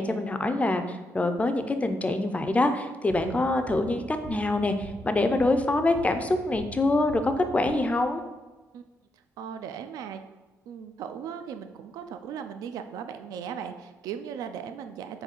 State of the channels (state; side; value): normal; both; correlation 0.82